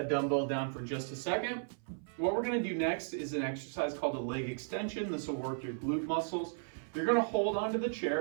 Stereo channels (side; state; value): left; silent; 54 dB below the other